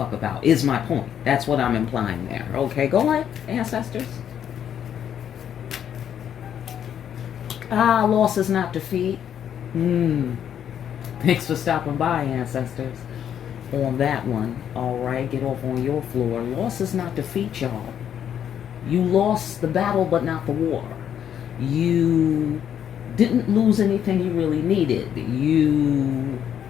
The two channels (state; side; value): quieter; right; 9.3 dB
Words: about, is my point. That's what I'm implying there. Okay, go ahead, ancestors. Loss is not defeat. Thanks for stopping by, ancestors. On that one, all right, get off on your floor. Loss is not defeat, y'all. You lost the battle, but not the war. You didn't lose anything you really needed. You